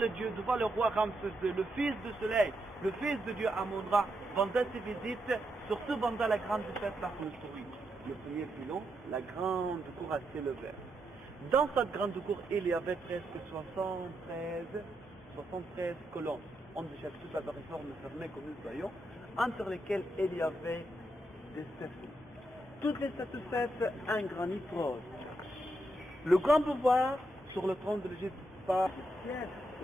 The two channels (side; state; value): both; normal; correlation 0.82